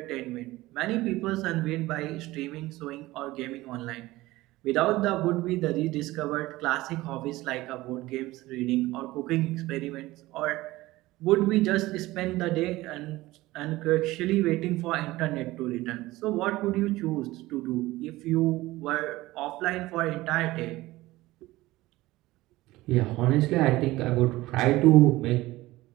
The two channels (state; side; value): quieter; left; 18.4 dB